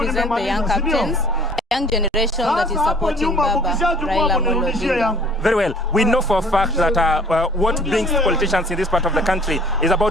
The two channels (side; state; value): both; normal; correlation 0.52